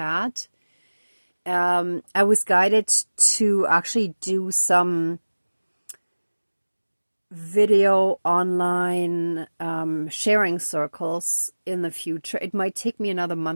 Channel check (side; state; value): both; inverted; correlation -1.00